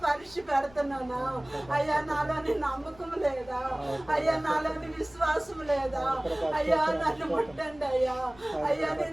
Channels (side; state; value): left; noise; rumble, 24 dB below the sound